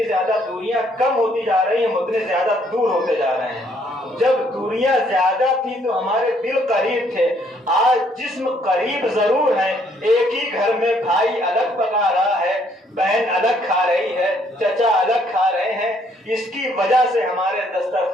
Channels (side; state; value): both; normal; correlation 0.67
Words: زیادہ دوریاں کم ہوتی جا رہی ہیں، اتنے زیادہ دور ہوتے جا رہے ہیں. جب دوریاں زیادہ تھی تو ہمارے دل قریب تھے، آج جسم قریب ضرور ہیں. ایک ہی گھر میں بھائی الگ پکا رہا ہے، بہن الگ کھا رہی ہے، چچا الگ کھا رہے ہیں. اس کی وجہ سے ہمارے